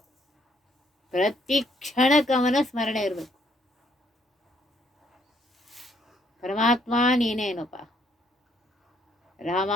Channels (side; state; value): both; normal; correlation 0.69